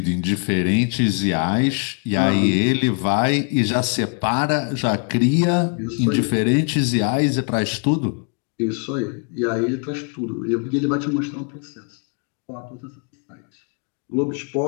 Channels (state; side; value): quieter; right; 37.5 dB